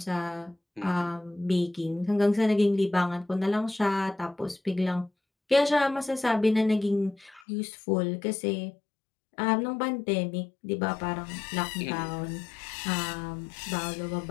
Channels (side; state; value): right; drops out; at 7.5 s